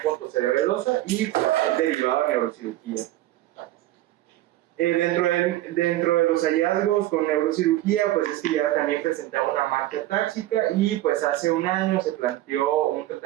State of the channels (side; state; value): left; quieter; 15.5 dB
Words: pontocerebelosa y derivada de neurocirugía. Dentro de los hallazgos con neurocirugía, pues es que ya también presentaba una marca táxica y pues hace 1 año se planteó un